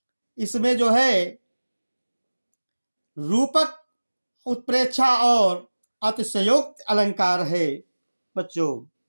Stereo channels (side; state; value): both; inverted; correlation -1.00